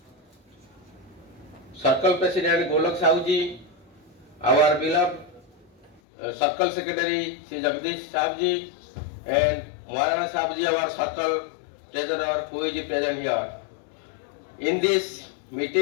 Circle President Golok Sahuji, our beloved Circle Secretary Sri Jagdish Sahuji, and Maharana Sahuji, our Circle Treasurer, who is present here. In this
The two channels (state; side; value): drops out; right; at 6.0 s